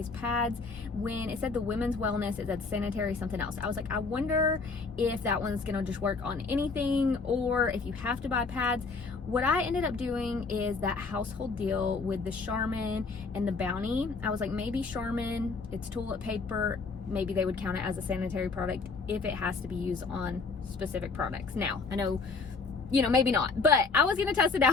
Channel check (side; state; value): right; quieter; 4.4 dB